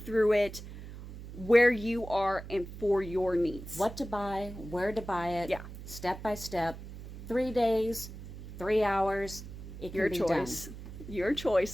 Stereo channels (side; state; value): right; noise; hum, 12 dB below the sound